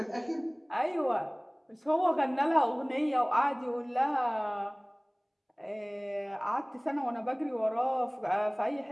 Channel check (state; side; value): identical; both; correlation 1.00